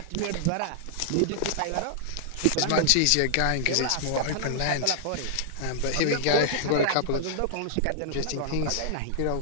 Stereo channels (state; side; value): different; both; correlation -0.01